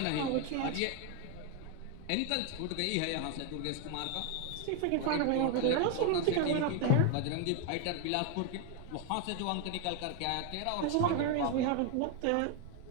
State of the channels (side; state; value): both; different; correlation 0.01